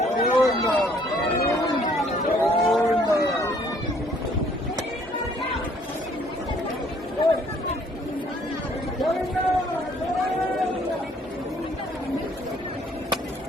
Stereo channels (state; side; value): normal; both; correlation 0.61